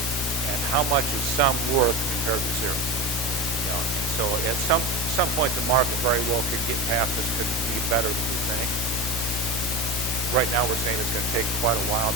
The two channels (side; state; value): both; normal; correlation 0.25